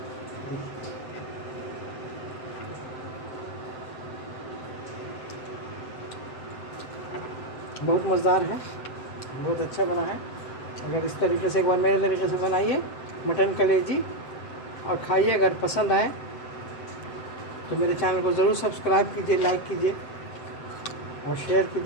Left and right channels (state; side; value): late; right; 7.7 ms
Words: बहुत मज़ेदार है, बहुत अच्छा बना है। अगर इस तरीके से एक बार मेरे तरीके से बनाइए मटन कलेजी और खाइए। अगर पसंद आए तो मेरे चैनल को ज़रूर सब्सक्राइब कीजिए, लाइक कीजिए और शेयर